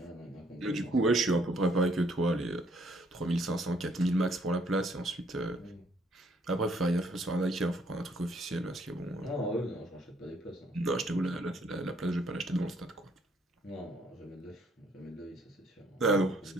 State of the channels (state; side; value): normal; both; correlation 0.66